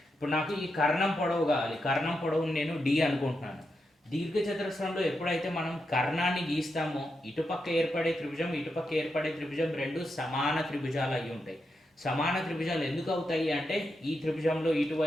ఇప్పుడు నాకు ఈ కర్ణం పొడవు కావాలి. కర్ణం పొడవుని నేను డి అనుకుంటున్నాను. దీర్ఘ చతురస్రంలో ఎప్పుడైతే మనం కర్ణాన్ని గీస్తామో ఇటుపక్క ఏర్పడే త్రిభుజం, ఇటుపక్క ఏర్పడే త్రిభుజం రెండు సమాన త్రిభుజాలు అయి ఉంటాయి. సమాన త్రిభుజాలు ఎందుకు అవుతాయి అంటే ఈ త్రిభుజంలో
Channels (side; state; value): both; normal; correlation 0.85